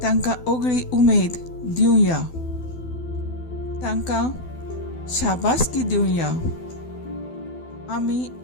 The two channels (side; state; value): right; late; 12 ms